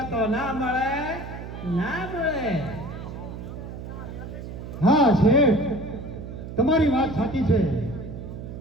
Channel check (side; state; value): right; noise; hum, 10 dB below the sound